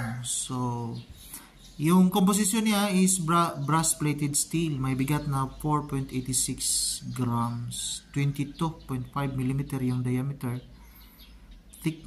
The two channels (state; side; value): identical; both; correlation 1.00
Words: So, yung composition niya is brass-plated steel. May bigat na 4.86 grams. 22.5 mm yung diameter.